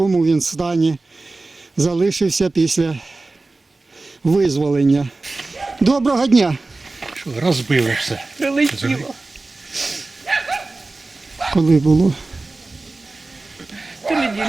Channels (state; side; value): quieter; left; 3.3 dB